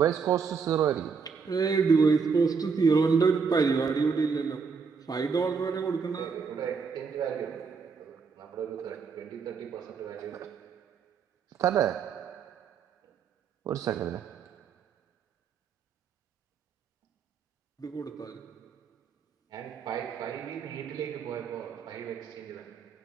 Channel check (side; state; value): left; quieter; 5.6 dB